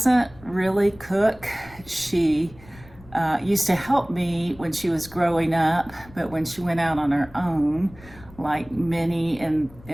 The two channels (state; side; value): noise; left; rumble, 22 dB below the sound